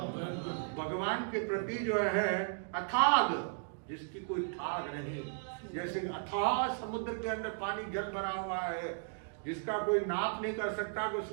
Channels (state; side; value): silent; left; digital silence